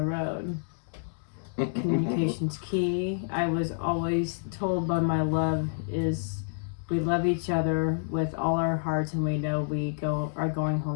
road." Communication's key. I was always told by my love is we love each other with all our hearts, and we know we are going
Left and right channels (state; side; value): silent; right; digital silence